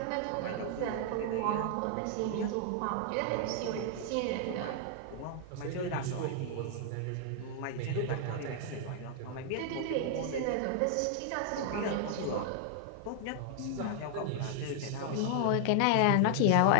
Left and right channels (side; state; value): both; different; correlation -0.01